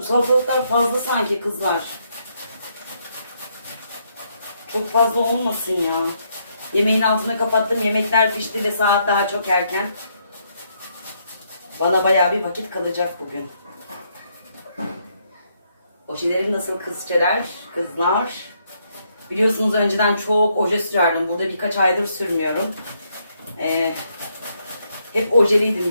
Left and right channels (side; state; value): both; inverted; correlation -0.74